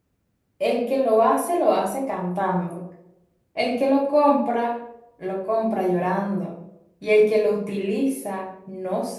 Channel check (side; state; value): both; identical; correlation 1.00